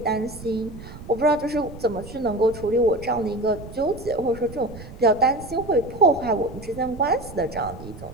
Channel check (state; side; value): noise; right; rumble, 14 dB below the sound